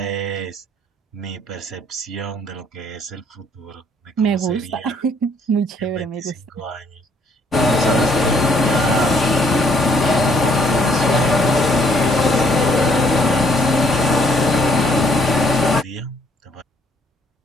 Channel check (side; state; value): both; normal; correlation 0.66